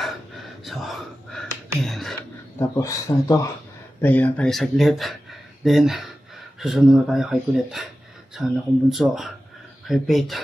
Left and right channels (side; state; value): both; normal; correlation 0.94